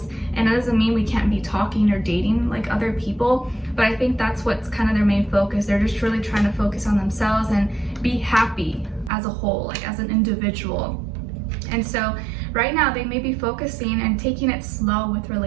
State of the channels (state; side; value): drops out; left; at 9.1 s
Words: and that doesn't mean we can't be talking or dating like other people, but I think that's what's kind of their main focus. They're just really trying to focus on themselves and be happy as a whole, like as an individual. And so right now they may be focusing and taking it slow with